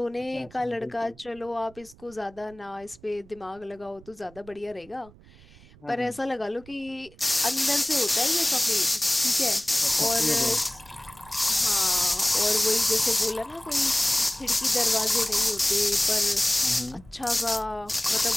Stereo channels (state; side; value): noise; right; rumble, 24 dB below the sound